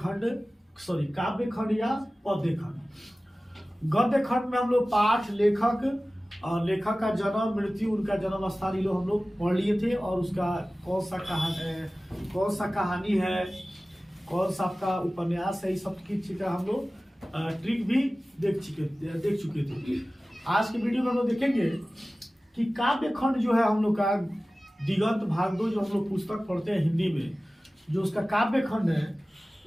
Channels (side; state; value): both; normal; correlation 0.97